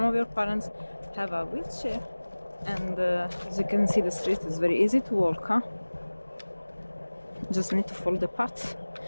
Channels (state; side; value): inverted; both; correlation -1.00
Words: of your parents have a wheelchair. And as you can see, the street is very easy to walk, huh? Just need to follow the path.